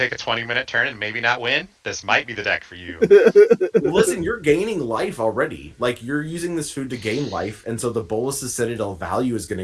a 20-minute turn and maybe not win? This might be the deck for you. Listen, you're gaining life already. Like, you're using this food to gain life, and so the Bolus's Citadel value is going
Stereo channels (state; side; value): identical; both; correlation 1.00